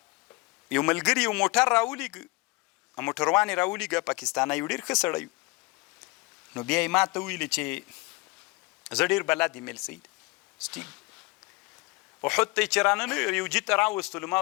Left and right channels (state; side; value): quieter; right; 24.1 dB